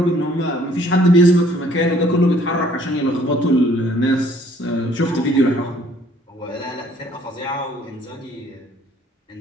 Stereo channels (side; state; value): both; normal; correlation 0.60